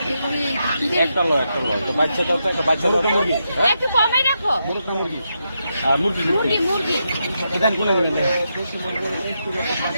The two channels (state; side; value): inverted; both; correlation -0.84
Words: একটা লো তো বাচ্চা কত? একটা বাচ্চা মুরগি। একটু কমে রাখো। মুরগি মুরগি মুরগি এখানে কোন নেবেন?